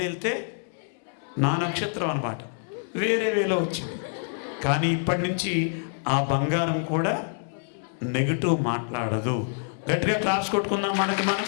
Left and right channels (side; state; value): right; silent; 60 dB below the other